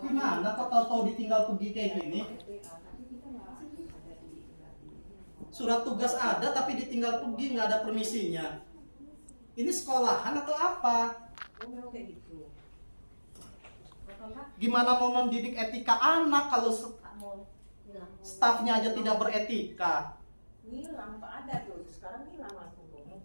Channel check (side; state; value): both; inverted; correlation -1.00